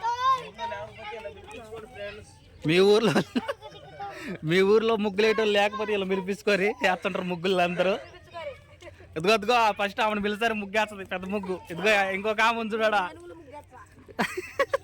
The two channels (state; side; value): identical; both; correlation 1.00